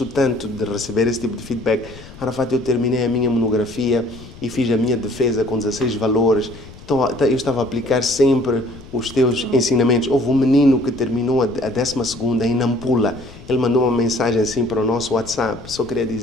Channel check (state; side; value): noise; left; rumble, 18 dB below the sound